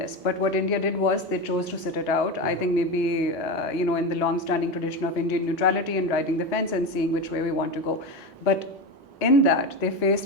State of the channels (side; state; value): both; normal; correlation 0.19